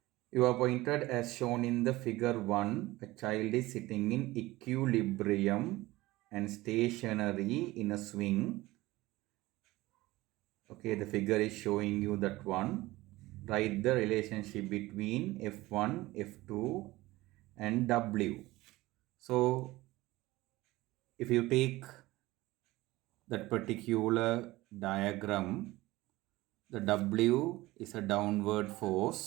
you are pointed as shown in the figure 1, a child is sitting in equilibrium and stationary in a swing. Okay, the figure is showing you that one. Write the relationship between F1, F2 and W. So, if you take that particular diagram, the W is a downward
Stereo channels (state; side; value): quieter; left; 18.9 dB